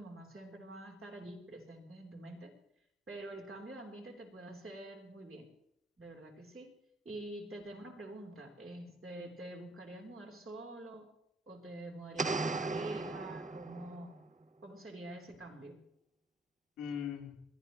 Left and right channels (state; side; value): normal; both; correlation 0.61